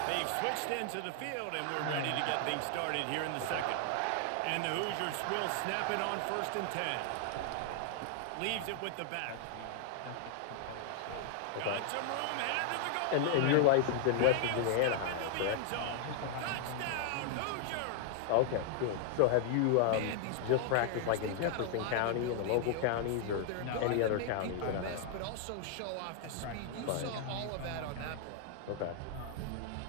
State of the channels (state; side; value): different; both; correlation 0.00